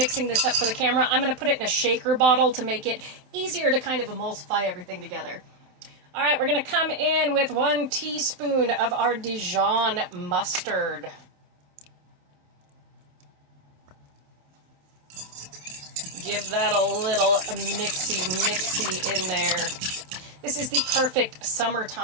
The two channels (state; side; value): late; left; 27 ms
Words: this up for the camera, I'm going to put it in a shaker bottle to make it easier to kind of emulsify everything together. All right, we're going to come in with 1 teaspoon of our Dijon mustard. Give that a little mixy in there. This is the perfect